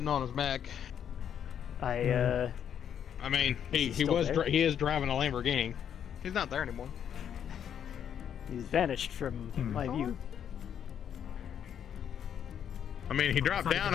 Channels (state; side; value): quieter; right; 8.8 dB